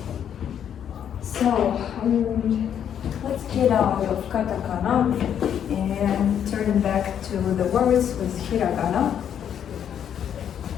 So let's get out of katakana and turn back to the words with hiragana.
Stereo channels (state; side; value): quieter; right; 9.1 dB